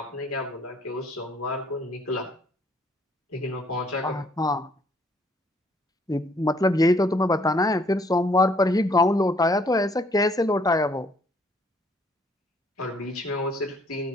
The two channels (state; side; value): normal; both; correlation 0.64